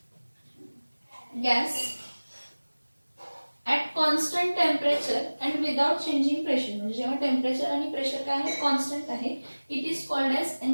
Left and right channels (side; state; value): both; inverted; correlation -1.00